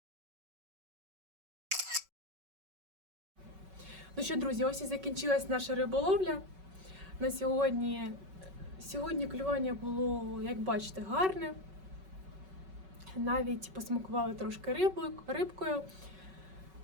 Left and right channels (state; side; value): late; left; 5.3 ms